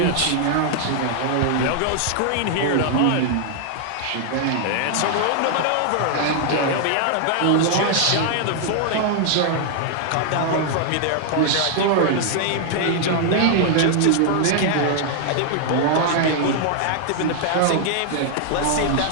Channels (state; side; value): different; both; correlation 0.00